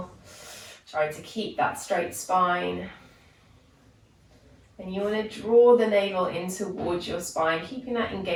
Try to keep that straight spine. And you want to draw the navel in towards your spine, keeping that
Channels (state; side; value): identical; both; correlation 1.00